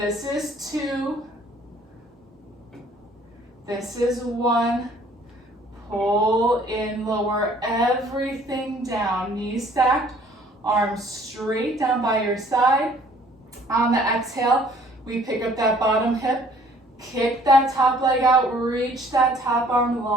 is 2. This is 1. Pull in, lower everything down. Knees stacked, arms straight down by your side. On the exhale, we pick up that bottom hip, kick that top leg out, reach that top arm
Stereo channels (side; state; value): both; normal; correlation 0.57